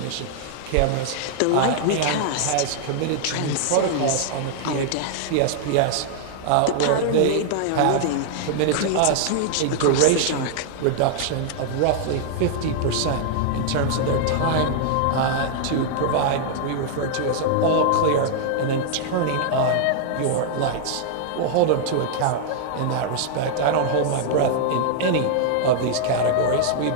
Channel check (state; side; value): different; both; correlation -0.01